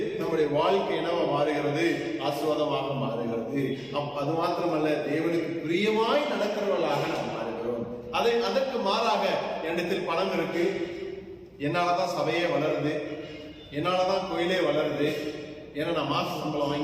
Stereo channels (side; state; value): both; identical; correlation 1.00